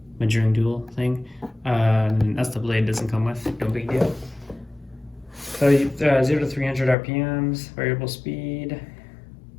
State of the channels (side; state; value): right; drops out; at 7.0 s